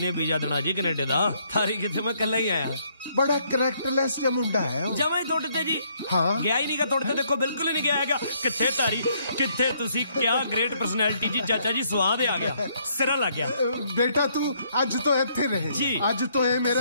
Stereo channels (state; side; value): inverted; both; correlation -0.69